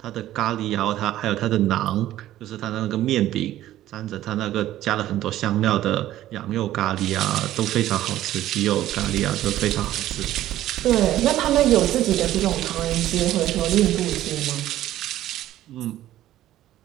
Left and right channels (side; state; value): left; quieter; 13.7 dB